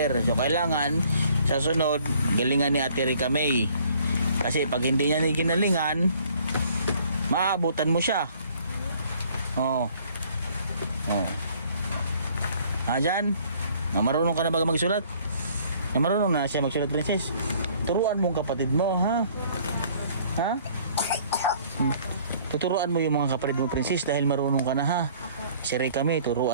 So, kailangan sa sunod, galingan ni Ate Rika May. Kasi pag hindi niya ginalingan, maabutan mo siya. Oh. Dyan? Marunong ka na ba magsulat? Marunong na siya magsulat, Princess. Turuan mo ang kapatid mo, ha? Ha? Tuturuan mo yung mga kapatid mo, Princess, dahil marunong ka na, ha? Si Rika May,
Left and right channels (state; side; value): inverted; both; correlation -0.58